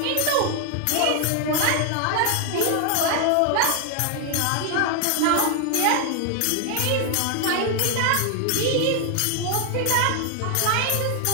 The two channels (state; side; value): different; both; correlation 0.00